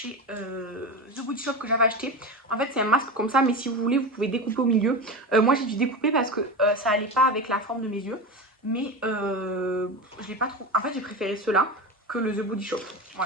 The Body Shop que j'avais acheté. En fait, c'est un masque comme ça, mais si vous voulez, vous pouvez découper au milieu. Moi, j'ai dû découper parce que ça allait pas avec la forme de mes yeux. Mais je l'ai pas trop. En fait, j'ai préféré ceux-là que le The Body Shop.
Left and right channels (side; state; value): both; normal; correlation 0.23